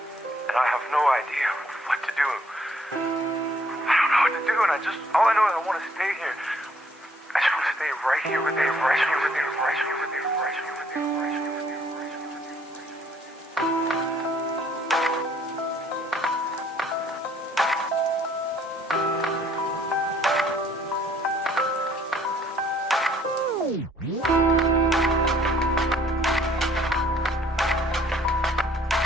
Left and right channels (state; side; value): normal; both; correlation 0.62